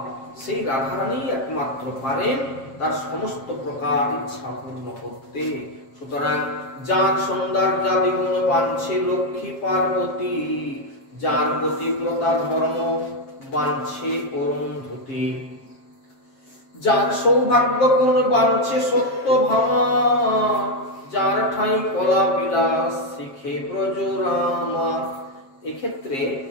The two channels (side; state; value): right; late; 7.5 ms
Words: সেই রাধারানী একমাত্র পারেন তার সমস্ত প্রকার ইচ্ছা পূর্ণ করতে। সুতরাং যার সৌন্দর্যাদি গুণ বাঞ্ছে লক্ষ্মী পার্বতী, যার গতিব্রতা ধর্ম বাঞ্ছে অরুন্ধতী, যার সৌভাগ্য গুণ বাঞ্ছে সত্য ভামা, যার ঠাই কলা বিলাস শিখে ব্রজরামা। এক্ষেত্রে